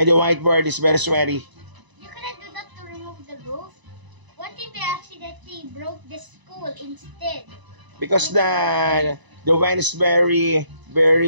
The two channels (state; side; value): late; left; 1.0 ms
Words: the whiteboard is very sweaty. You cannot do that to remove the roof. What if we accidentally broke the school instead? Because the wind is very